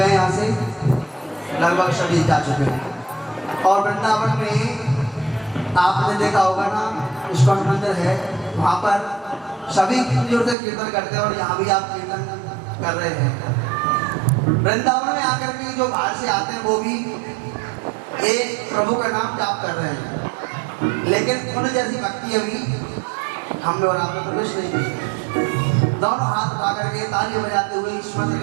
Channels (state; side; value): drops out; left; at 10.6 s